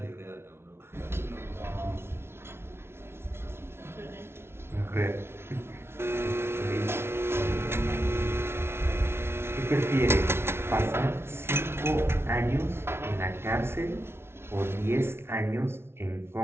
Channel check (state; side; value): late; left; 0.12 ms